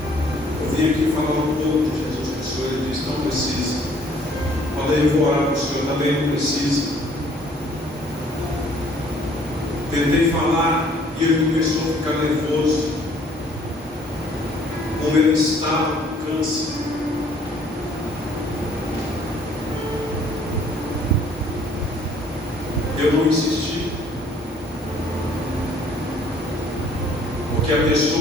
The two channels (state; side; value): normal; both; correlation 0.59